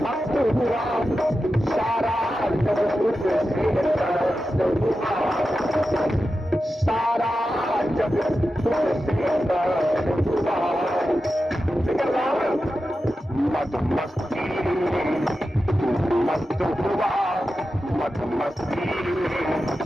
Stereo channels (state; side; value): normal; both; correlation 0.91